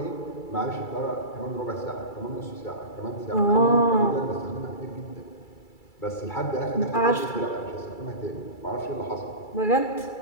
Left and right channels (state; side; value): late; right; 2.3 ms